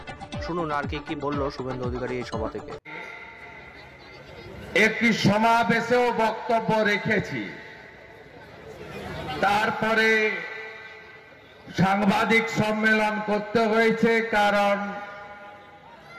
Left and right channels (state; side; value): identical; both; correlation 1.00